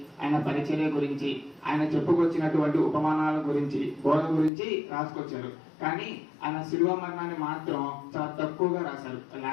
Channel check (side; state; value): right; drops out; at 4.5 s